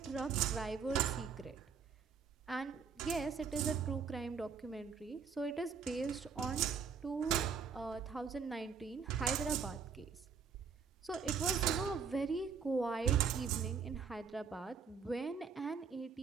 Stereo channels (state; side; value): quieter; left; 6.0 dB